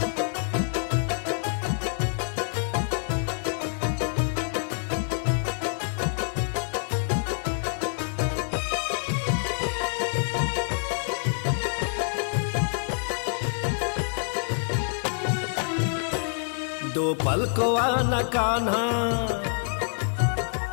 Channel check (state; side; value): silent; right; 60 dB below the other